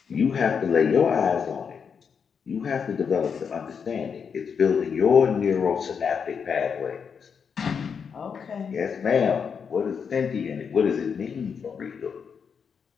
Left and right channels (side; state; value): right; quieter; 6.5 dB